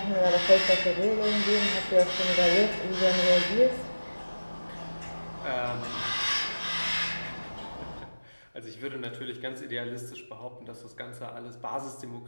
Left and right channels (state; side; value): inverted; both; correlation -1.00